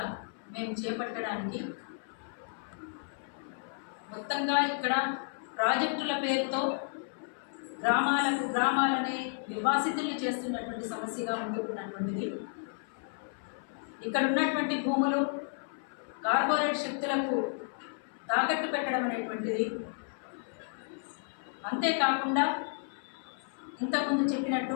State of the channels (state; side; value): silent; right; 56 dB below the other